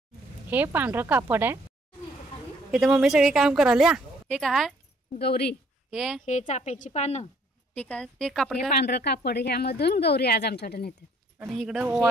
हे पांढरं कापड आहे. इथे मम्मी सगळे काम करायला. हे काय गौरी, हे चाफ्याची पानं, ठीक आहे. ते कापड पांढरं कापड, ह्यामधून गौरी आज आमच्याकडे नेतात. आणि इकडे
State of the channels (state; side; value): normal; both; correlation 0.63